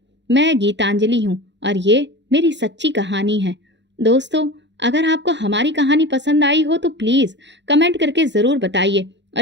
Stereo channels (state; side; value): late; left; 0.52 ms